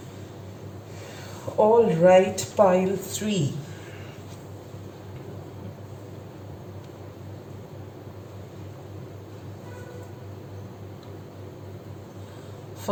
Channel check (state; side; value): identical; both; correlation 1.00